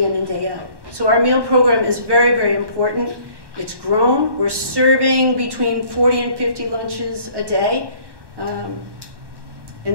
in and day out. So our meal program is very, very important. It's grown. We're serving between 40 and 50 lunches a day. And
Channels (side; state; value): left; late; 1.1 ms